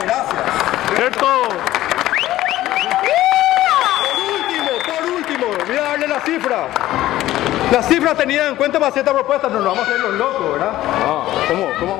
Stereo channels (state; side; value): quieter; right; 14.9 dB